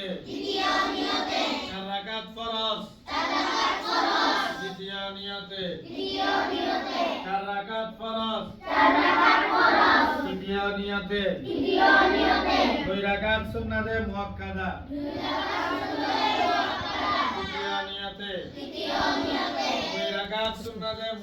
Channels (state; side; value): identical; both; correlation 1.00